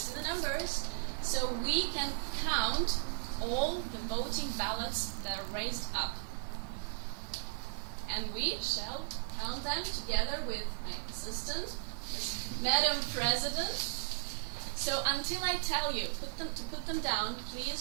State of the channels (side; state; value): left; silent; 54 dB below the other